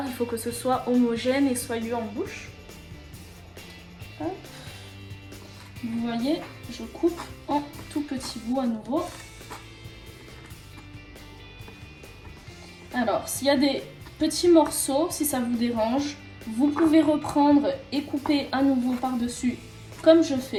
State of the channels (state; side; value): identical; both; correlation 1.00